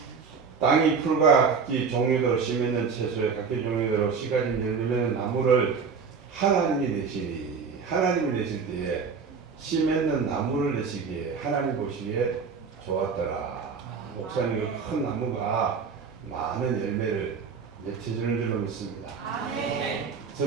땅이 풀과 각기 종류대로 씨 맺는 채소에 각기 종류대로 씨 가진 열매는 나무를 하나님이 내시니 하나님이 내실 때에 씨 맺는 나무를 내시기에 하나님 보시기에 좋았더라. 목사님의 큰 나무가 많은 열매를 맺혀주는 줄로 믿습니다.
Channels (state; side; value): quieter; left; 5.6 dB